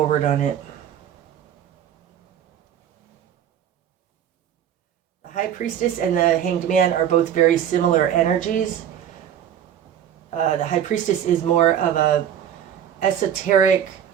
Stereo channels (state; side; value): quieter; left; 9.7 dB